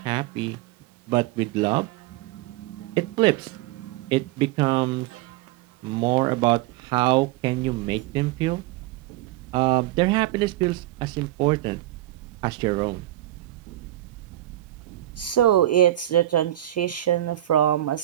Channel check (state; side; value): quieter; left; 14.8 dB